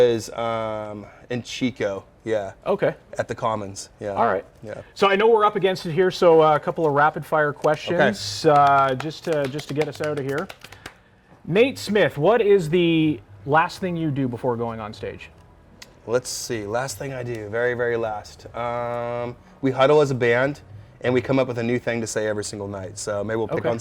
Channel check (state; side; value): identical; both; correlation 1.00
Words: in Chico. Yeah. Okay. At the Commons. Yeah. All right. Yeah. So I know we're up against it here. So a couple of rapid fire questions, just to get us out of here. Nate Smith, what is the last thing you do before going on stage? Let's see. Last thing I do, very, very last. We huddle as a band, and we come up with a new thing to say every single night. So maybe we'll pick on